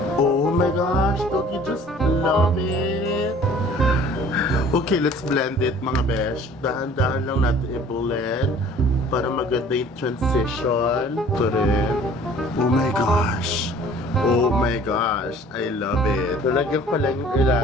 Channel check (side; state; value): both; normal; correlation 0.50